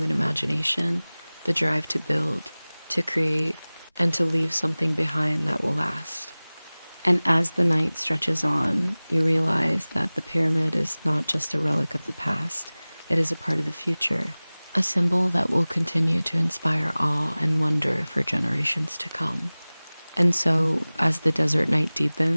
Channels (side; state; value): both; inverted; correlation -0.99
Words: imagination, the drive to build, to create, and to leave something behind that will last. And as the night stretches on, you realize that the pyramid is not just a relic of the past, it is a part of the future, a symbol that will continue to inspire awe and wonder for generations to come. And so, as the desert night